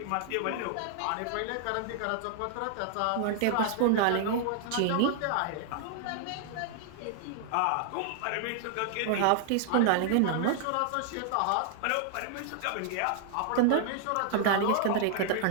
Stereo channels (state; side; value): different; both; correlation -0.01